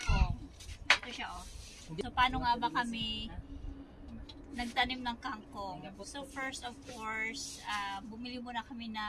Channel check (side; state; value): both; identical; correlation 1.00